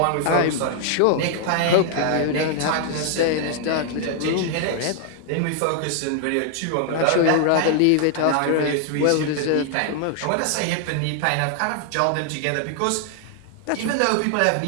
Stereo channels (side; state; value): both; different; correlation 0.00